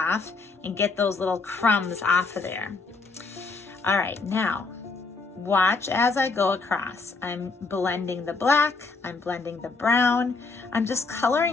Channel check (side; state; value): right; quieter; 4.1 dB